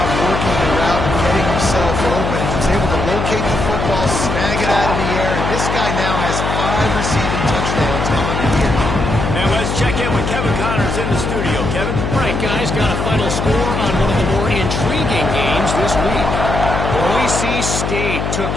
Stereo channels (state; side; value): noise; left; hum, 2 dB below the sound